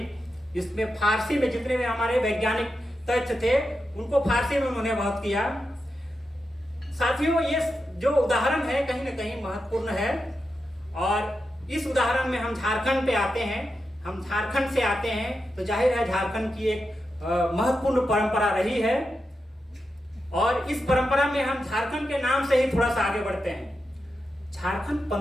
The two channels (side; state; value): both; normal; correlation 0.88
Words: इसमें फारसी में जितने भी हमारे वैज्ञानिक तथ्य थे उनको फारसी में उन्होंने बहुत किया। साथियों, ये जो उदाहरण है कहीं ना कहीं महत्वपूर्ण है। और इस उदाहरण में हम झारखंड पे आते हैं, हम झारखंड से आते हैं, तो जाहिर है झारखंड की एक महत्वपूर्ण परंपरा रही है। और इस परंपरा में हम झारखंड के नाम से ही थोड़ा सा आगे बढ़ते हैं। झारखंड